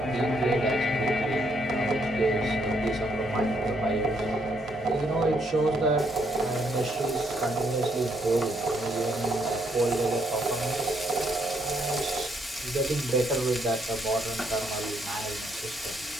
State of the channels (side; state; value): both; normal; correlation 0.72